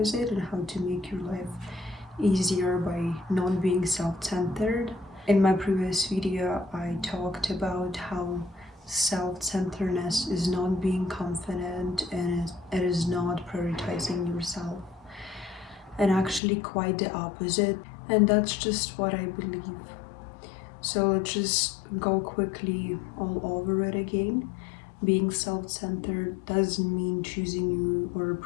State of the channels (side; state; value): right; drops out; at 16.4 s